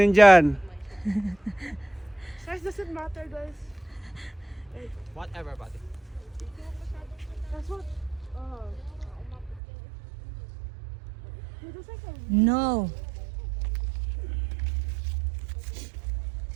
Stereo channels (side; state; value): left; drops out; at 9.6 s